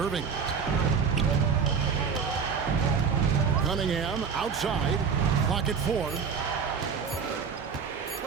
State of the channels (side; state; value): left; quieter; 6.2 dB